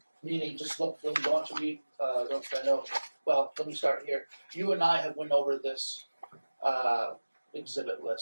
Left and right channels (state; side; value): inverted; both; correlation -1.00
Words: Meaning, just look. When you want to read, those I know. Well, let me start here. You and I have went over this exhibit